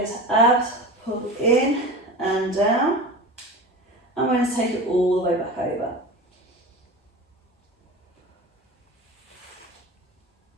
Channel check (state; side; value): normal; both; correlation 0.31